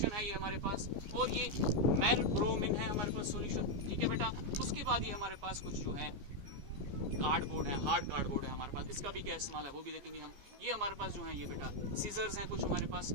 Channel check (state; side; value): late; left; 14 ms